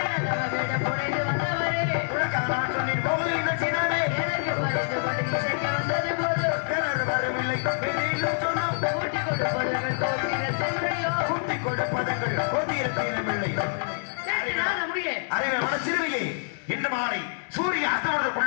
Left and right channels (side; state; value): right; silent; 61 dB below the other